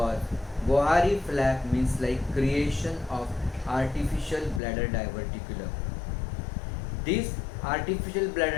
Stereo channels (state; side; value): drops out; right; at 4.6 s